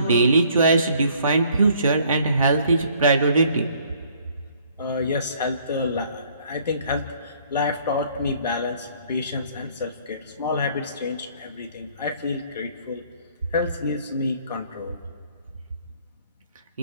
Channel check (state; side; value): inverted; both; correlation -0.60